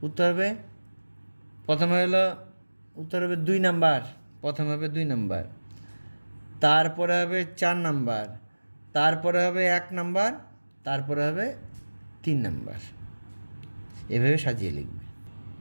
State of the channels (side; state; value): both; inverted; correlation -1.00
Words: উত্তর হবে প্রথমে হলো, উত্তর হবে 2 নাম্বার, প্রথমে হবে 2 নাম্বার, তারপরে হবে 4 নাম্বার, তারপরে হবে 1 নাম্বার, তারপরে হবে 3 নাম্বার। এভাবে সাজিয়ে লিখবে।